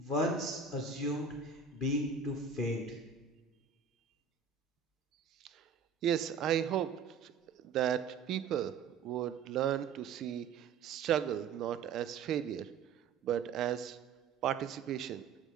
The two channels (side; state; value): left; quieter; 5.8 dB